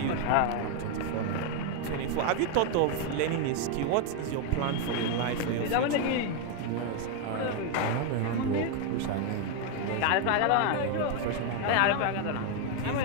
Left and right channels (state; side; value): different; both; correlation 0.01